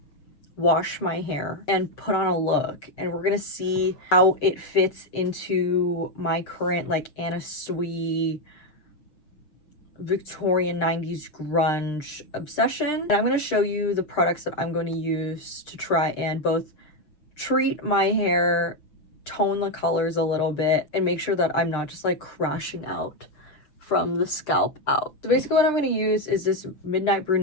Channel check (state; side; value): late; right; 6.6 ms